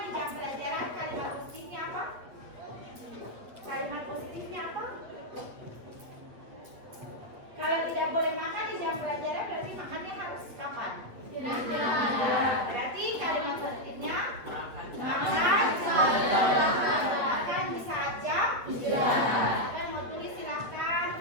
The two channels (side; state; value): left; late; 8.3 ms